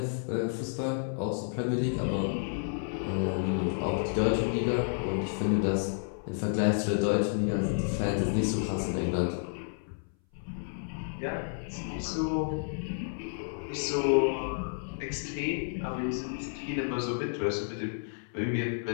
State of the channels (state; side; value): silent; right; 57 dB below the other